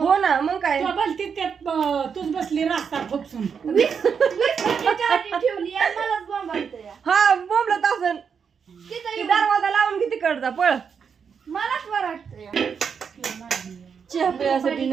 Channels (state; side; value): quieter; left; 6.6 dB